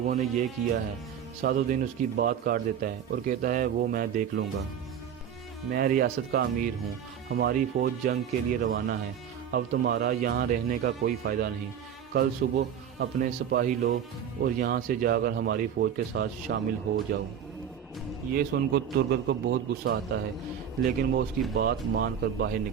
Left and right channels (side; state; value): left; quieter; 8.6 dB